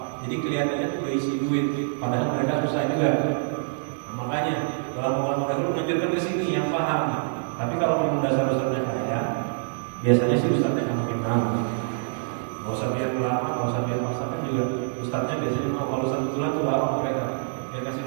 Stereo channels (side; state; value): left; silent; digital silence